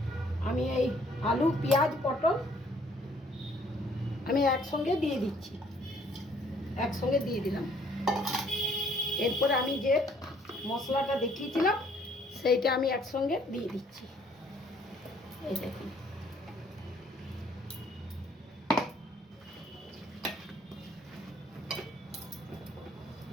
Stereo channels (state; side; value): normal; both; correlation 0.62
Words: আমি এই আলু, পেঁয়াজ, পটল আমি একসঙ্গে দিয়ে দিচ্ছি, একসঙ্গে দিয়ে দিলাম। এরপরে আমি যে মশলাটা দেখিয়েছিলাম সেইটা আমি একসঙ্গে দিয়ে দিচ্ছি। এই দেখুন